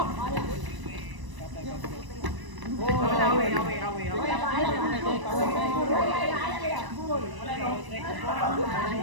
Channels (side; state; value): left; late; 1.0 ms